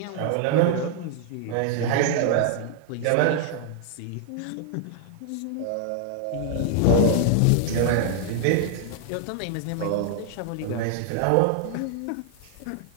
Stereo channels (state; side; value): different; both; correlation 0.00